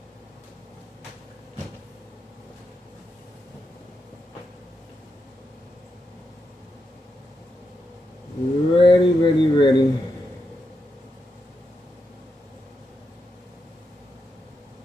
Ready, ready, ready.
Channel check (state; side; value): normal; both; correlation 0.85